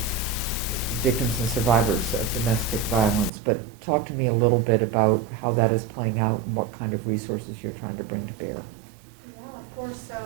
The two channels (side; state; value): left; drops out; at 3.3 s